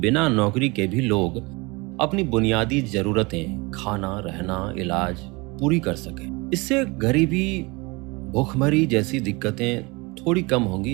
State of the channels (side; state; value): left; quieter; 25.9 dB